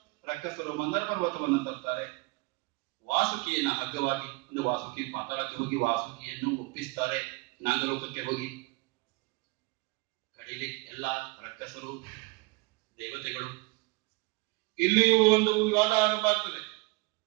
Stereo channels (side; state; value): left; quieter; 24.7 dB